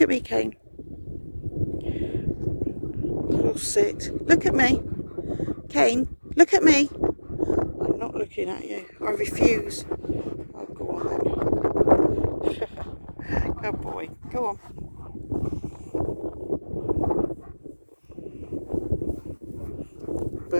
at me, Kane. Oh, sit. Look at me. Kane, look at me. I'm not looking at you. I refuse. Oh, go on then. Good boy. Go on.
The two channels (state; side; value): inverted; both; correlation -1.00